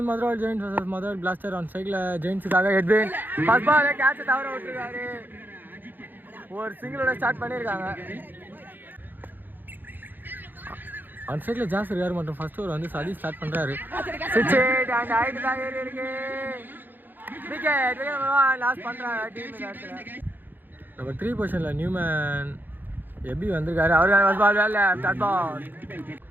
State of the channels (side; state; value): left; late; 0.090 ms